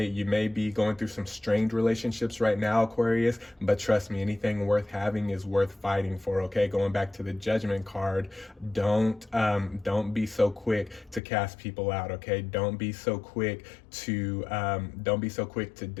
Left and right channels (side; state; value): right; drops out; at 11.2 s